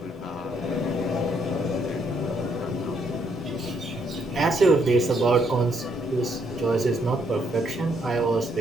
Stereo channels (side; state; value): both; normal; correlation 0.73